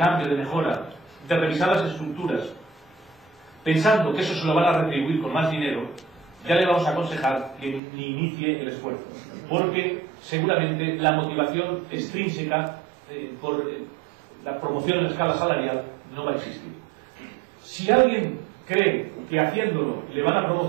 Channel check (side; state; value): left; drops out; at 7.8 s